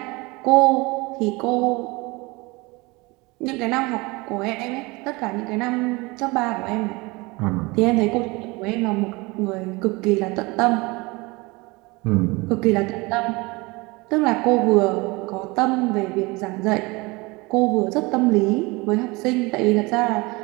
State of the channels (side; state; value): left; quieter; 24.5 dB